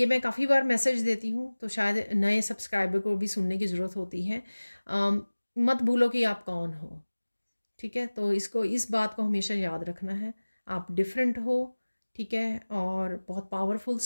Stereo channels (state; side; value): inverted; both; correlation -1.00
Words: मैं काफ़ी बार मैसेज देती हूँ, तो शायद नए सब्सक्राइबर को भी सुनने की ज़रूरत होती है। मत भूलो कि आप कौन हो, ठीक है। तो इसको, इस बात को हमेशा याद रखना है। आप डिफरेंट हो, ठीक है, और बहुत पावरफुल